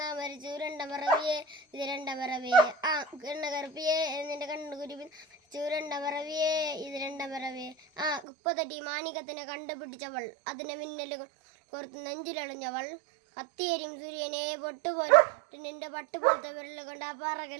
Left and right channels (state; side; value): drops out; left; at 8.2 s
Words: നാ മരിച്ചു രണ്ടാം പറവിയേ ഇത് രണ്ടാം പറവിയേ എണ്ണ കറുപ്പിയേ നിന്റെ കണ്ണു കുരുവി രണ്ടാം പറവിയേ ഇത് രണ്ടാം പറവിയേ കുപ്പത്തട്ടി മാണികത്തിനെ കണ്ടുപിടിച്ചവൾ അതിനെ മിന്നല് കോർത്ത് നെഞ്ചിലളിഞ്ഞവൾ കത്തിയരിയും സൂര്യനെ പൊട്ടുപോലെ നിന്റെ പട്ടുപോലത്തെ വിരൽ കൊണ്ട് ആ